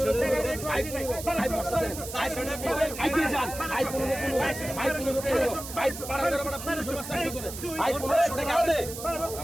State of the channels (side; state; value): right; noise; hiss, 10 dB below the sound